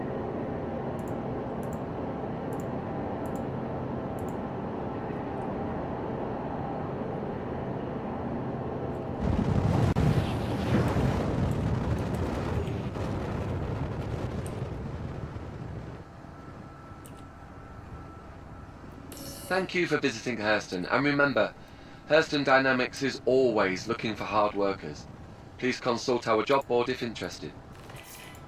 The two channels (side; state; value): both; identical; correlation 1.00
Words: Thank you for visiting Hurston, and remember, Hurston Dynamics is always looking for hard workers. Please consult our job board if interested.